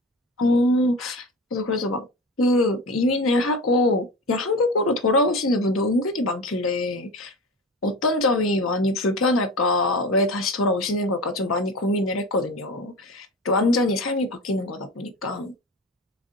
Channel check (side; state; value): both; normal; correlation 0.30